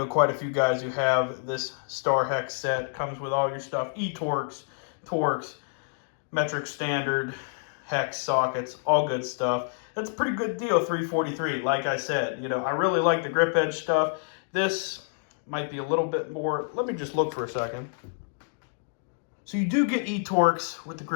quite a few guys who have this Star Hex set. Comes with all your stuff, E-Torx, Torx, metric standard, Hex sockets, all good stuff. That's a pretty good deal, $343. Like I said, you know, I really like the Grip Edge stuff. This might be a little bit more. Let me just look for a second. So you do get E-Torx with the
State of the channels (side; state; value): right; silent; digital silence